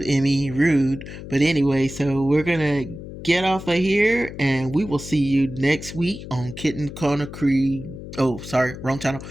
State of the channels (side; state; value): left; noise; hum, 12 dB below the sound